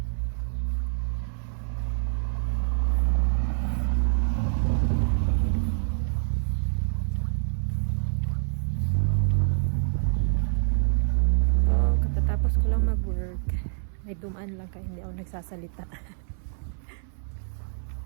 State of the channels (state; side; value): silent; left; 60 dB below the other